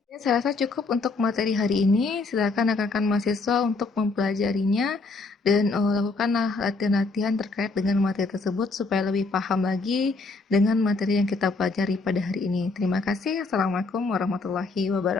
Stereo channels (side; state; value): right; quieter; 3.8 dB